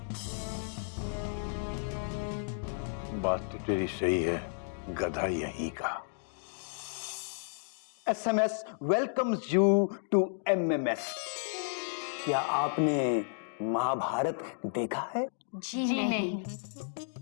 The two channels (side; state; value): right; silent; digital silence